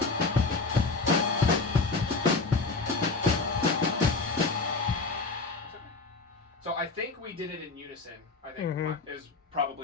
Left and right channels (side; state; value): right; quieter; 3.9 dB